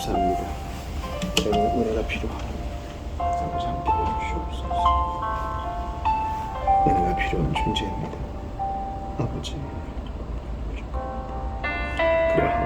저는 은혜가 필요하고 아버지 함께 해주시옵소서. 은혜가 필요한 존재입니다. 아버지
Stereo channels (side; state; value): both; identical; correlation 1.00